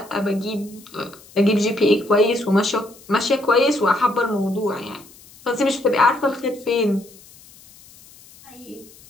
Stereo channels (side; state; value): left; noise; hiss, 24 dB below the sound